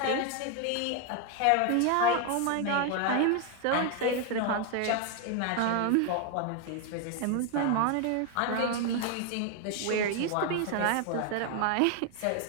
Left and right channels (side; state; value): both; different; correlation 0.01